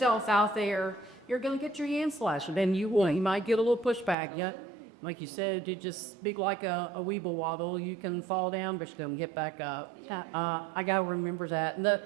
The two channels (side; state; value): left; drops out; at 4.2 s